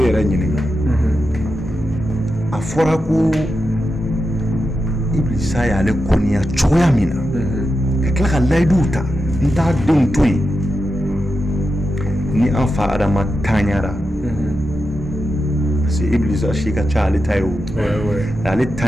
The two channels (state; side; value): normal; both; correlation 0.89